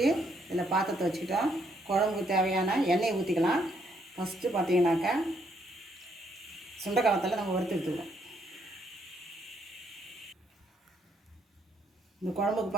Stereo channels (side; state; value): both; normal; correlation 0.73